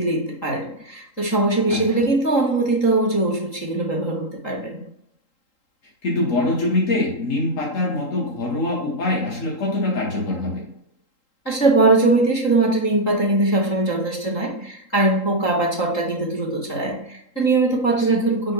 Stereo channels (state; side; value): late; right; 3.8 ms